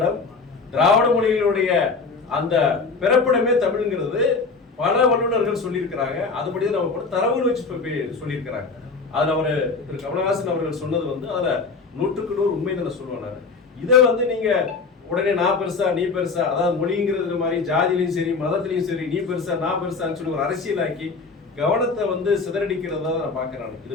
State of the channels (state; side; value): quieter; right; 4.4 dB